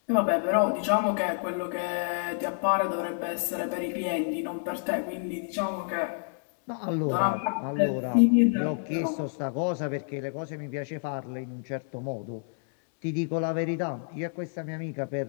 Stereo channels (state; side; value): silent; right; digital silence